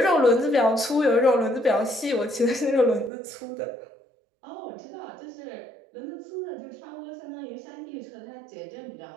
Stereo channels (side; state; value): left; drops out; at 3.1 s